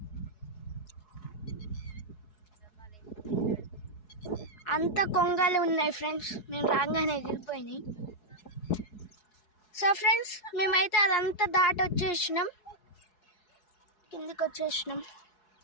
అంత కొంగలు ఉన్నాయి ఫ్రెండ్స్, మేము రాగానే ఎగిరిపోయినాయి. సో ఫ్రెండ్స్, మేమైతే అదంతా దాటి వచ్చేసినాం, కిందికి వచ్చేసినాం.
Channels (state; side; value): late; right; 4.7 ms